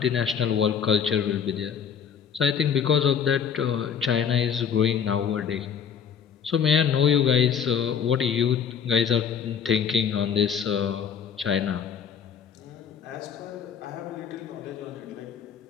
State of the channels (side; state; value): right; quieter; 7.5 dB